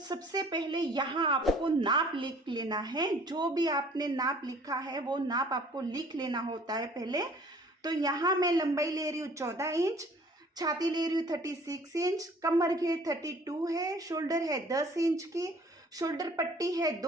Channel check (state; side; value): normal; both; correlation 0.53